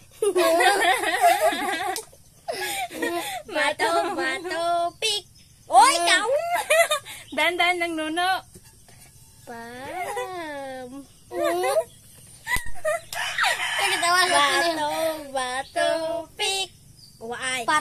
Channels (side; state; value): both; identical; correlation 1.00